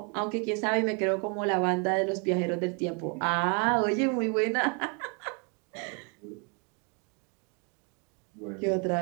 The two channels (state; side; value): quieter; left; 36.0 dB